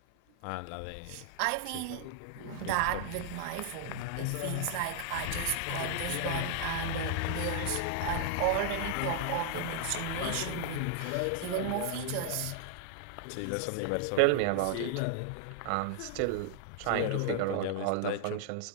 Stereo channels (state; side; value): different; both; correlation 0.00